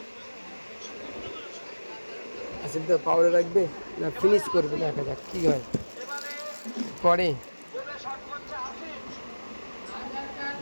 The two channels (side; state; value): both; inverted; correlation -1.00